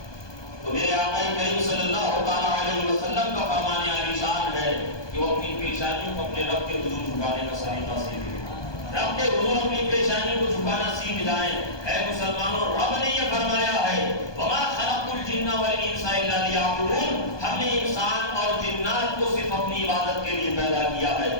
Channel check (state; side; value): late; right; 1.2 ms